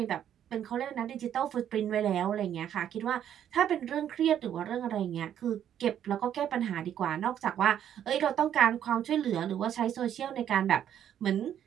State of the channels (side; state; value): left; quieter; 10.0 dB